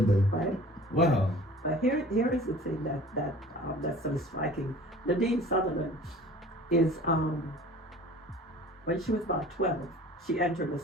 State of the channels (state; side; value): normal; both; correlation 0.45